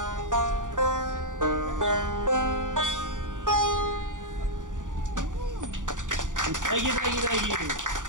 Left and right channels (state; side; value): late; left; 0.87 ms